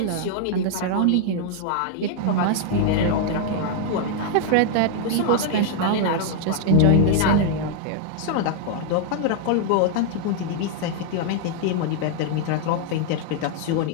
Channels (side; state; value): both; different; correlation 0.00